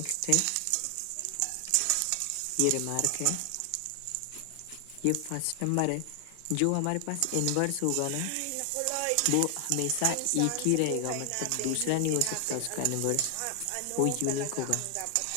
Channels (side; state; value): both; different; correlation 0.00